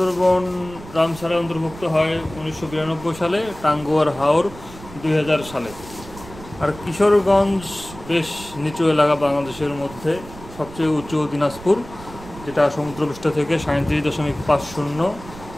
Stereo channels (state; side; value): noise; right; rumble, 16 dB below the sound